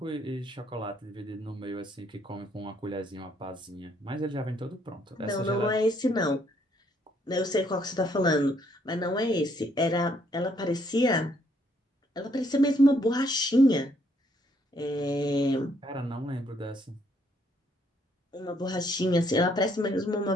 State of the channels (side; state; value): both; normal; correlation 0.69